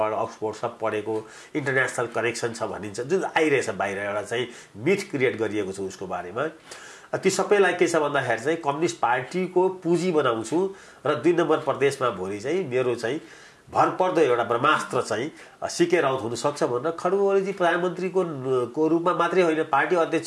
अक्सफोर्ड सब पढेको, इन्टरनेसनल कनेक्सन छ भनिन्छ, जुन आइरहेछ बाहिर एउटा चाहिँ मिथ क्रिएट गरिएको छ उसको बारेमा। ती सबैलाई के छ भन्दाखेरि चाहिँ कम्युनिस्ट पार्टीको पुँजी बनाउँछु र 2 नम्बर प्रदेशमा भोलि चाहिँ मेरो चाहिँ भरपर्दो एउटा ब्रह्मास्त्र चाहिँ सीके राउत हुनसक्छ भनेर खड्गु ओलीजी प्रधानमन्त्रीको रूपमा मात्रै होइन, पार्टी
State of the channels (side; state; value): both; identical; correlation 1.00